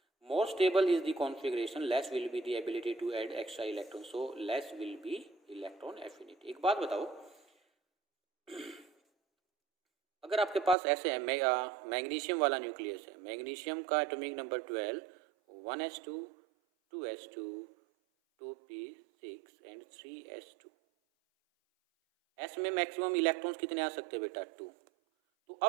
More stable is the configuration, less will be the ability to add extra electrons, so less will be electron affinity। एक बात बताओ, अगर आपके पास ऐसे है मैग्नीशियम वाला न्यूक्लियस है, मैग्नीशियम का atomic number 12, 1s2, 2s2, 2p6 and 3s2। S में मैक्सिमम इलेक्ट्रॉन्स कितने आ सकते हैं बेटा, 2। तो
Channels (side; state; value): left; drops out; at 10.8 s